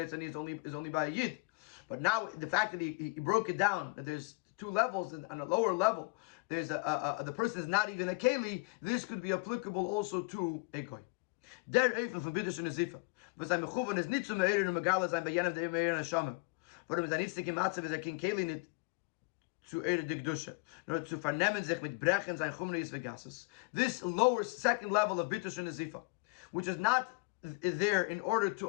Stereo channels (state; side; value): quieter; right; 28.9 dB